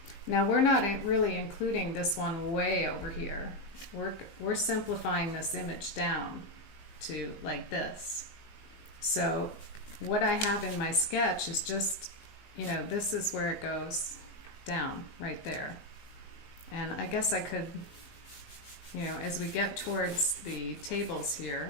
Now we're not really including this one way over here. We're simplifying this image down to like this. So what I have in my sketch is just, you know, this is where it goes down right there. And I guess I could, you know, as we get towards the tables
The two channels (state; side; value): late; right; 19 ms